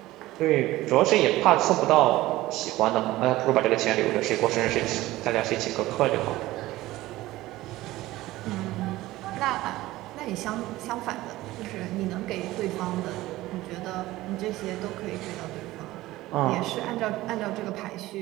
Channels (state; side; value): quieter; left; 17.3 dB